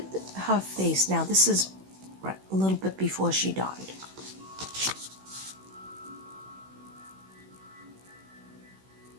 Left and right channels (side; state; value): left; late; 16 ms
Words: her face now. This is a little bit before she died.